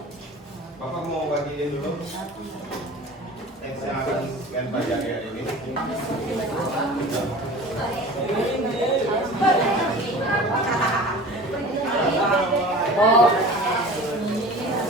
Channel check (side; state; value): both; normal; correlation 0.39